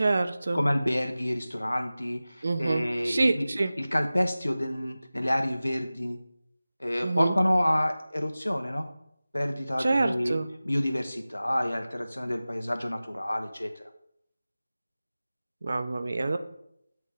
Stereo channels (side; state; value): both; inverted; correlation -0.97